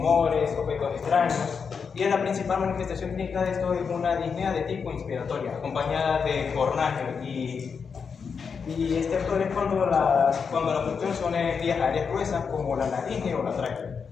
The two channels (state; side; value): quieter; right; 6.0 dB